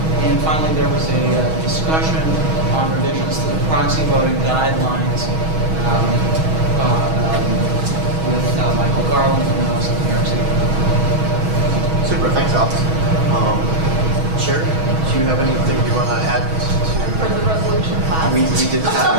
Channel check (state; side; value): late; left; 6.3 ms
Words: And finally, there was a discussion on revisions to the proxy voting guidelines with Michael Garland from the Office of the New York City. Super. Thanks, Alex. Sherry, do you have anything you want to add For the resolution passed. We did